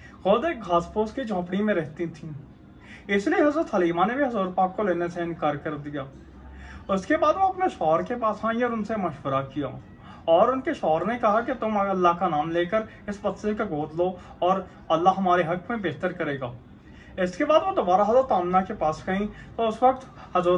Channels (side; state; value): both; identical; correlation 1.00